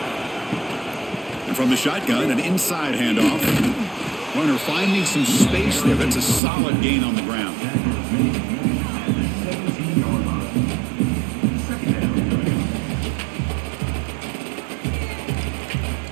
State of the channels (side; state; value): left; drops out; at 6.4 s